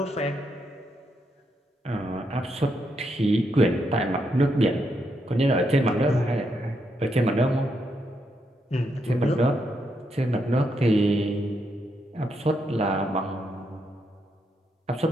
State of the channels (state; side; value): normal; both; correlation 0.80